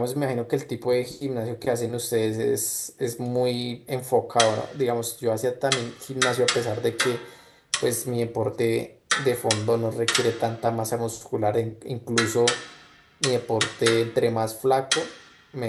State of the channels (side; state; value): both; identical; correlation 1.00